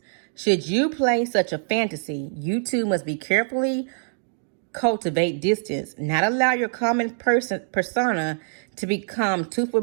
Should you play such a fantasy, you too must be carefully cultivate distance, not allow your common persona to become too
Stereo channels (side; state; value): left; silent; digital silence